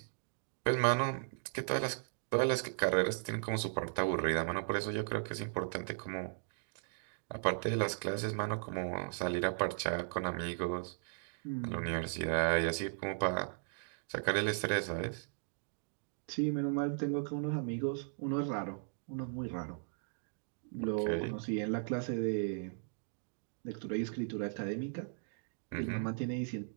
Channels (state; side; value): silent; left; digital silence